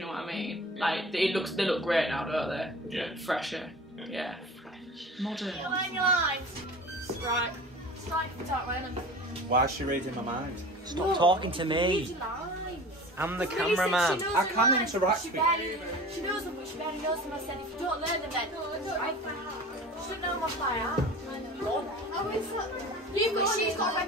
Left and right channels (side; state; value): both; normal; correlation 0.38